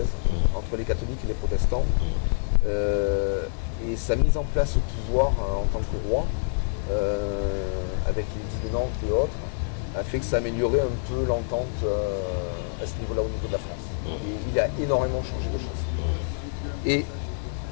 entre les catholiques et les protestants. Et sa mise en place au pouvoir en tant que roi, avec l'édit de Nantes et autres, a fait que ça améliorait un peu l'entente à ce niveau-là, au niveau de la France. Et il a énormément changé de choses. Et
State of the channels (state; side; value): silent; right; 61 dB below the other